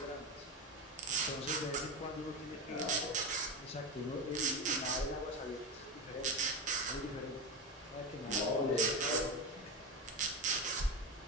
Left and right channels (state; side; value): normal; both; correlation 0.18